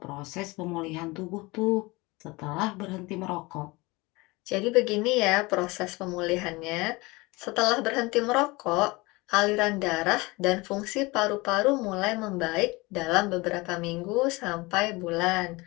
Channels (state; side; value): quieter; right; 23.6 dB